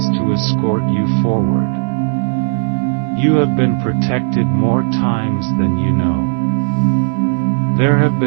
to escort you forward. You have been protected more times than you know. There have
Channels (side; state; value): left; silent; digital silence